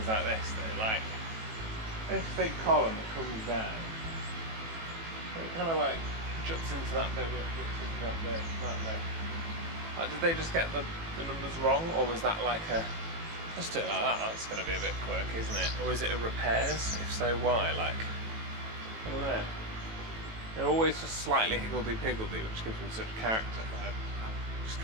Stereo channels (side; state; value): left; late; 18 ms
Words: like this though, like this big column that comes down, it kind of like juts into that bit, juts into that bit, that bit. Like, did they just get the numbers wrong, or was that like a, let's do it like that, that's going to be a bit quirky, isn't it? Or is it a repairs? If so, why? Like, I don't know. They're always just slightly higgledy-piggledy, which gives them such character, but I'm just